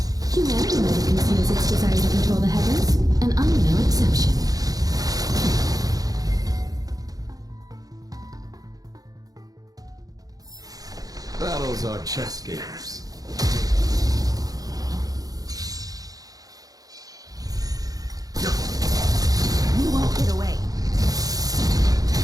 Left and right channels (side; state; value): left; late; 0.18 ms